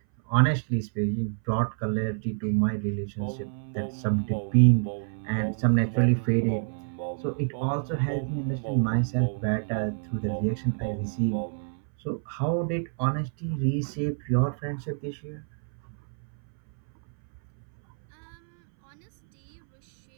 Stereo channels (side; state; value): left; silent; 60 dB below the other